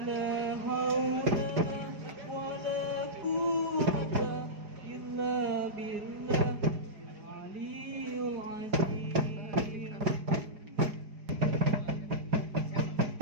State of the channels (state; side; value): late; left; 4.9 ms